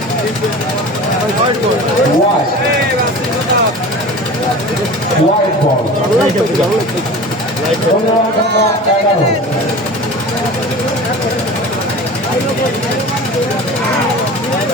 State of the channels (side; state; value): both; normal; correlation 0.36